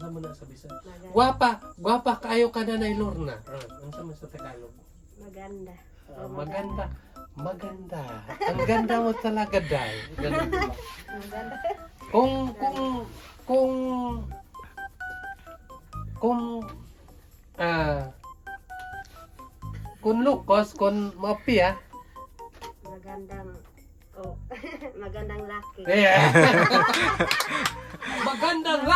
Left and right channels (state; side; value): identical; both; correlation 1.00